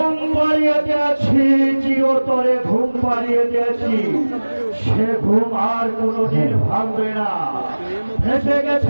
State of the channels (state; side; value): inverted; both; correlation -1.00